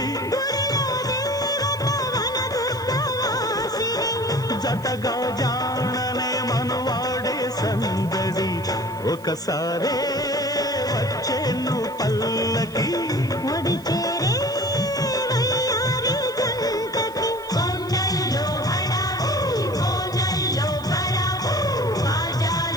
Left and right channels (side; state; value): right; noise; hiss, 23 dB below the sound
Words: జతగా జాననే మనువాడే సందడి ఒకసారే వచ్చేను పల్లకి